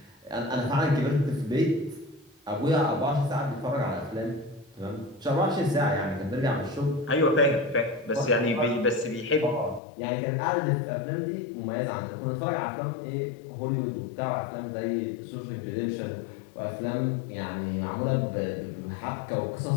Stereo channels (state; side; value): drops out; right; at 9.8 s